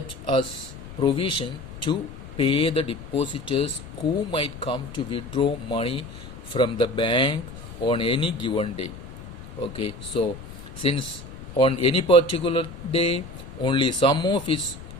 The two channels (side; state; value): left; noise; rumble, 14 dB below the sound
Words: as provision to pay the depositors who might come to withdraw money from the bank on any given day. Okay, so since on any particular day only some of its